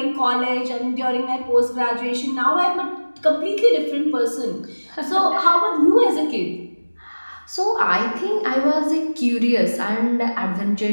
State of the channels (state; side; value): inverted; both; correlation -1.00